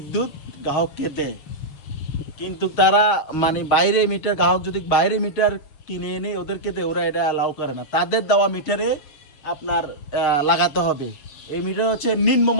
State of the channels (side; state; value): right; late; 7.1 ms